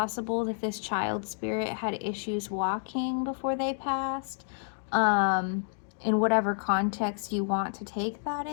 that this child spirit had issues walking before they passed, in whatever context you want to take that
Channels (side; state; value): right; silent; digital silence